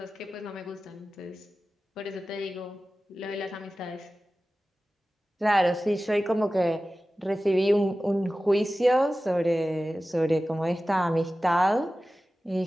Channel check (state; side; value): normal; both; correlation 0.95